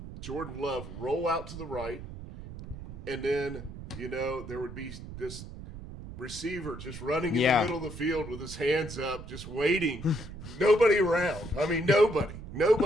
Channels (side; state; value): right; noise; rumble, 12 dB below the sound